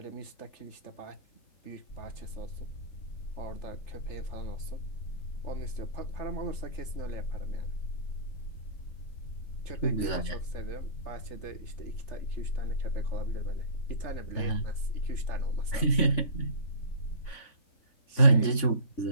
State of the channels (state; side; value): late; right; 3.5 ms